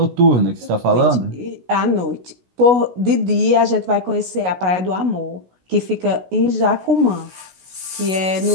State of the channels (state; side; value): late; left; 16 ms